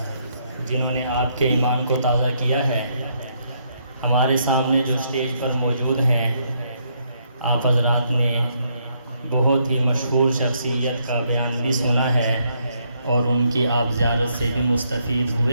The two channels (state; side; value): inverted; both; correlation -0.74